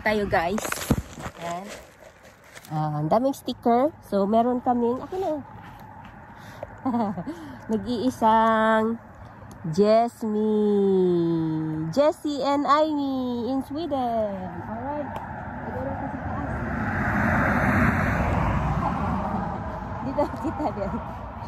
tayo guys. Ayan. Ang daming sticker. So meron kaming ako na. Nag-iisang Jessie and Amy in Sweden. Alright. Siguro kasi taas. Dito kita din.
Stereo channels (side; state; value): both; identical; correlation 1.00